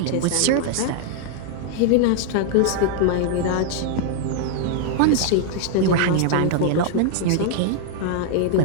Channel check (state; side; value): different; both; correlation 0.00